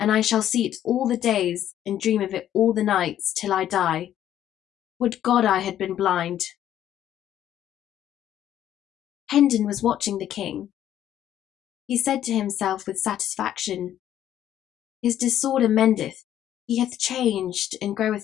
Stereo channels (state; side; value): quieter; right; 11.3 dB